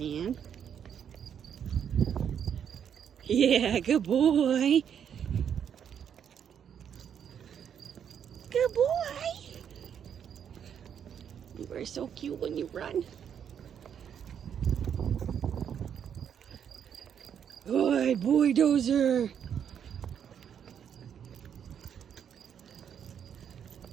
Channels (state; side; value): quieter; left; 8.4 dB